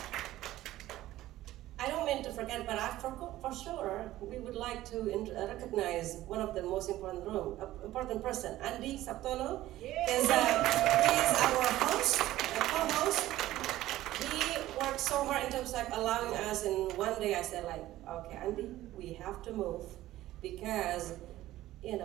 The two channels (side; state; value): left; quieter; 15.2 dB